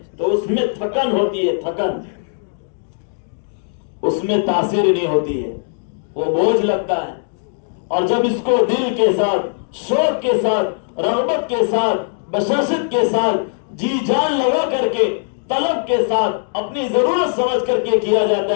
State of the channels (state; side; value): silent; right; digital silence